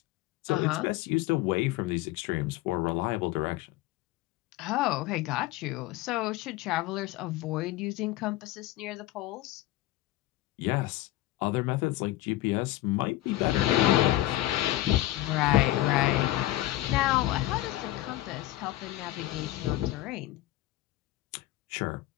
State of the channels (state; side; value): quieter; right; 16.2 dB